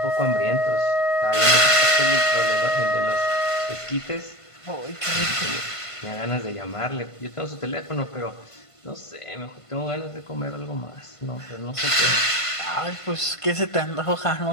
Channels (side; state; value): right; late; 1.5 ms